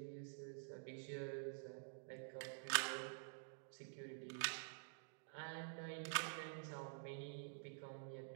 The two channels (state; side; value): silent; left; digital silence